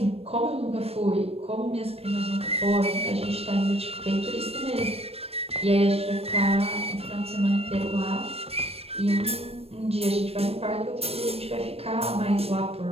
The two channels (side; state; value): left; late; 0.29 ms